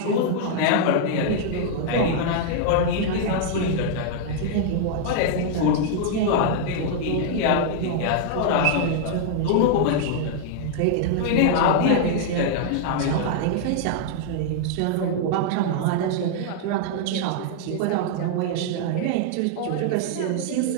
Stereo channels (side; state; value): both; different; correlation -0.01